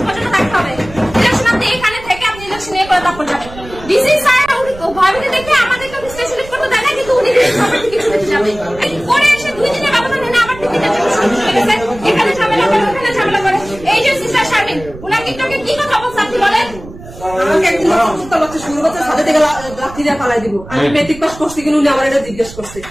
পর্যন্ত থাকতে হবে। ইলেকশন আপনি এখানে থেকে আপনি ইলেকশন এ করে তারপর যাবেন। ডিসি স্যার ভয়ভীতি দেখে আমাদেরকে সিলেক্ট করতে দেয় না, কিন্তু উনি কিছু দিতে যাবে করে এসে 2 দিনের ব্যবধান এনে আবার 3 দিনের জন্য শুরু করে গেছে। এখানে ঝামেলা করে, ওখানে ঝামেলা করে। এই যে সিস্টার শারমিন, ওনার টিকটকে কি কথা বলছে আপনি বলেন? আমাকে একদিন শুরু করতে সাথে থেকে লাঠি দিয়ে পালাই দিব। আমি মেট্রিক পাস করছি কিনা উনি আমার এটা জিজ্ঞেস করছে।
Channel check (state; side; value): noise; right; rumble, 16 dB below the sound